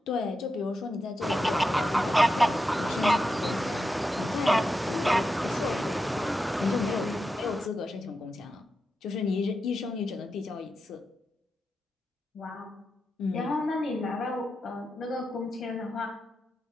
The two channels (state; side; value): normal; both; correlation 0.88